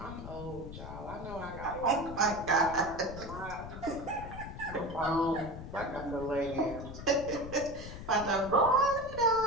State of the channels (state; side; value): noise; left; rumble, 11 dB below the sound